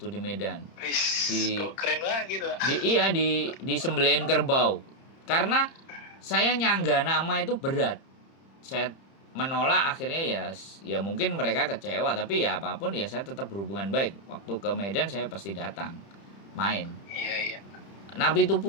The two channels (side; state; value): right; late; 30 ms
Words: di Medan. Kok keren banget gitu. Di sembelih kerbau. Karena saya nyangga nama itu berat. Saya menolak, akhirnya ya mungkin mereka kecewa, tapi ya apapun ya saya tetap berhubungan baik. Waktu ke Medan saya pasti datang main. Iya. Napi